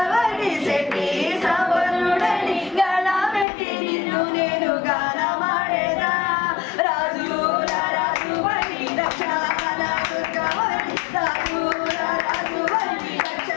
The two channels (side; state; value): right; drops out; at 3.5 s